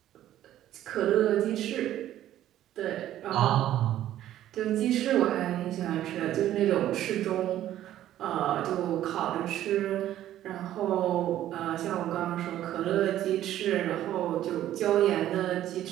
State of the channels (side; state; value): left; quieter; 12.6 dB